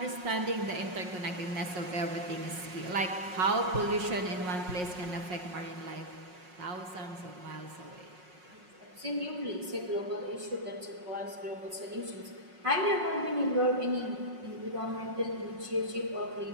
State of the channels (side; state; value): left; late; 5.5 ms